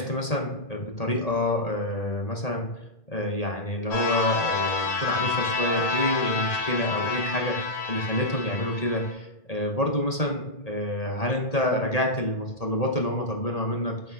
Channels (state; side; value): late; right; 1.8 ms